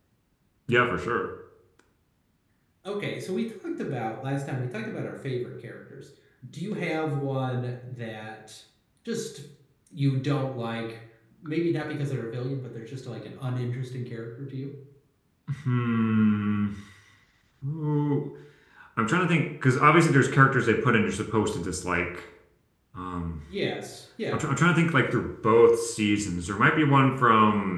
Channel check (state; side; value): identical; both; correlation 1.00